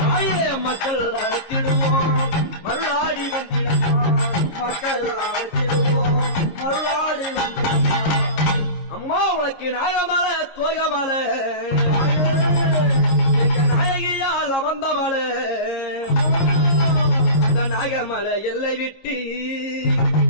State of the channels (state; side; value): late; right; 11 ms